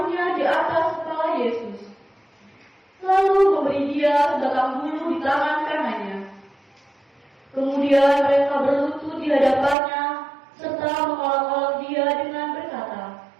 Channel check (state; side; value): drops out; left; at 9.8 s